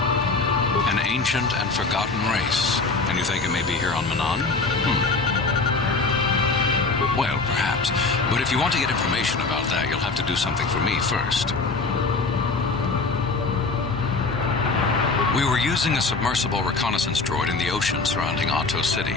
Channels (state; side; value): quieter; right; 3.9 dB